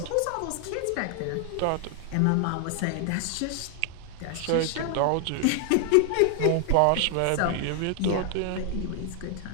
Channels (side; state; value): both; different; correlation 0.00